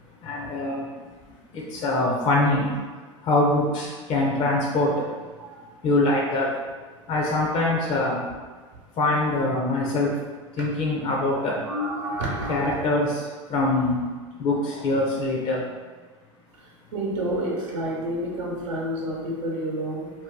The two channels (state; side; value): normal; both; correlation 0.25